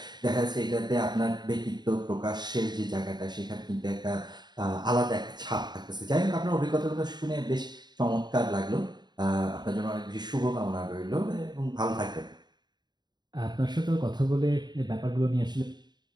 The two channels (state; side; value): late; left; 0.21 ms